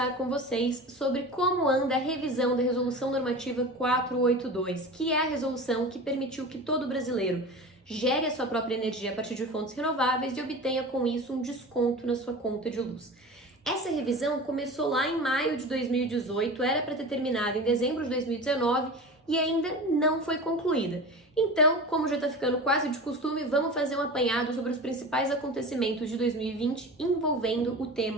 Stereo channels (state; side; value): normal; both; correlation 0.32